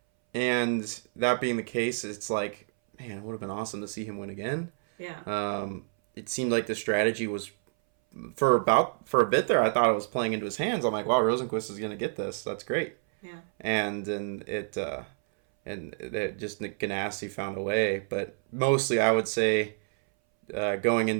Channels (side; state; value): left; silent; 59 dB below the other